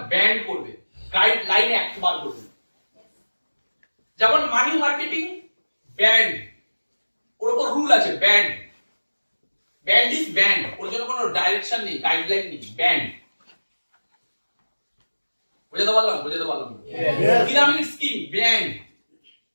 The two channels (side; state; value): both; inverted; correlation -1.00